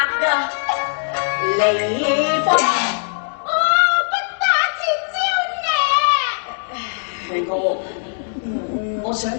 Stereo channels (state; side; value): silent; right; 66 dB below the other